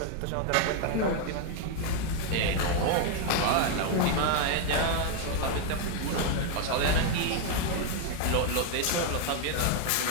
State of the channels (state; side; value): different; both; correlation 0.00